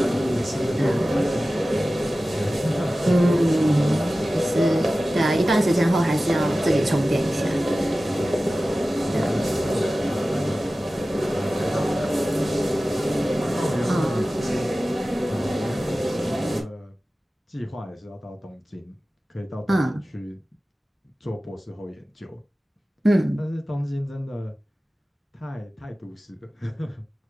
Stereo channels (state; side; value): normal; both; correlation 0.96